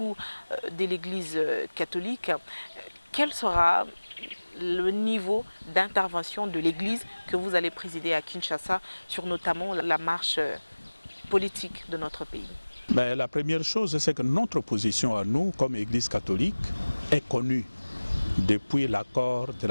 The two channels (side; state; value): both; inverted; correlation -1.00